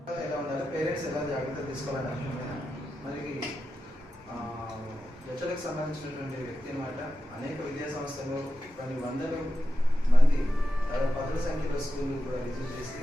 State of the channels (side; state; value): both; normal; correlation 0.91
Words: ఎలా ఉండాలి, పేరెంట్స్ ఎలా జాగ్రత్తలు తీసుకోవాలని అర్థమైనా మనకి హెచ్ఎల్కి సంబంధించినటువంటి వ్యక్తి అనమాట. అనేక విద్యా సంస్థలు కొన్ని వందల మంది పదుల సంఖ్యలో స్కూళ్ళు కూడా విజిట్ చేసి